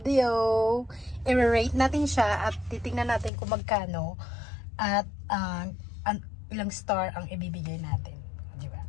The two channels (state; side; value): drops out; right; at 3.3 s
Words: I-rate natin siya at titingnan natin kung magkano at ilang star ang ibibigay natin. Diba?